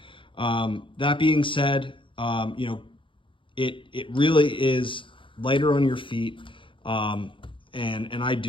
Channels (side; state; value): right; late; 0.25 ms